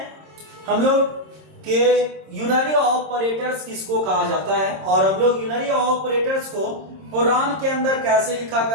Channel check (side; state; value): left; late; 26 ms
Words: हम लोग कि यूनरी ऑपरेटर्स किसको कहा जाता है और हम लोग यूनरी ऑपरेटर्स को प्रोग्राम के अंदर कैसे लिखा